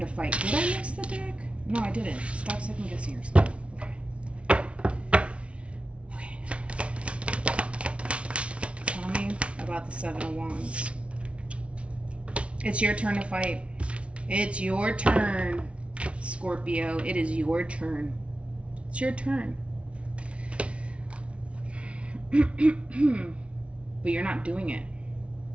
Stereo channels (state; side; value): late; left; 0.061 ms